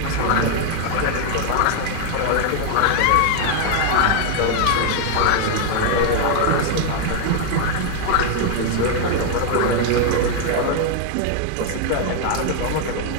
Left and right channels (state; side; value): different; both; correlation 0.00